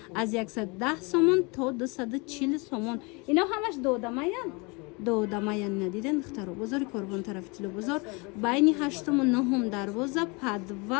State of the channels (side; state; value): right; quieter; 29.2 dB